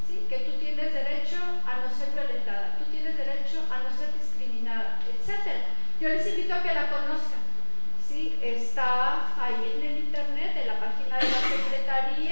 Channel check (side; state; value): both; inverted; correlation -1.00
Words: ¿sí?, que tú tienes derecho a no ser violentada, tú tienes derecho a no ser discriminada, etc. Yo les invito a que la conozcan. ¿Sí? Está ahí en el internet, en la página de la